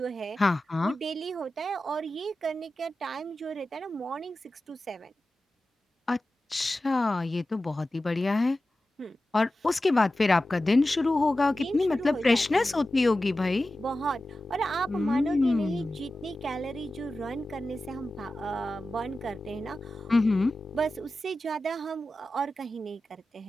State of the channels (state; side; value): normal; both; correlation 0.94